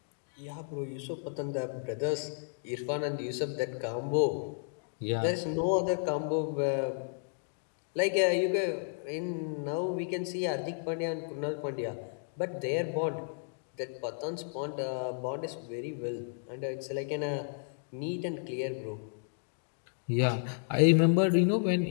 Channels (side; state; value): right; silent; digital silence